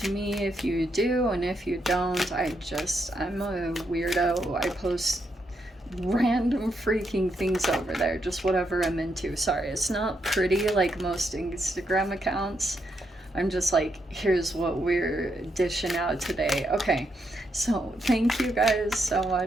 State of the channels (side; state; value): both; normal; correlation 0.80